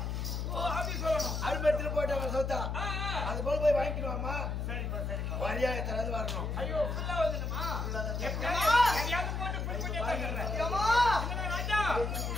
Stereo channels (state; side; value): noise; left; hum, 2 dB below the sound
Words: அப்படி சொல்லணும். அரும்பெடுத்துட்டு போயிட்டு சொத்தா அது போல போய் வாங்கிக்கணுமா? சரிப்பா சரிப்பா. வரியா எத்தனாவது வரணும்? ஐயோ ஃபுல்லா வந்துடுமா? எதையாவது போட்டு ஃபுல் பண்ணி தந்துடுறேன். ஏம்மா, என்னடா ராஜா